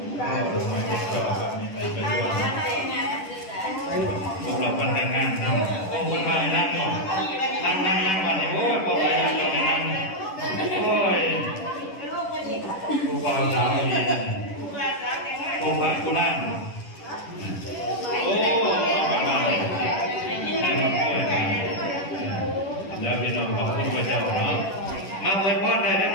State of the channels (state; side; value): late; right; 10 ms